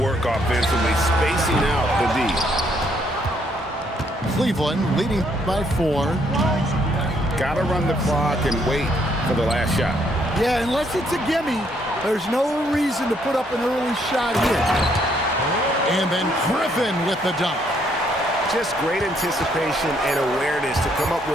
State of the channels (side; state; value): both; normal; correlation 0.70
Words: offensively, spacing out the D. Cleveland leading by 4. Got to run the clock and wait for the last shot. Yeah, unless it's a gimme, there's no reason to put up an early shot here. And then Griffin with the dunk. Just great anticipation and awareness to come up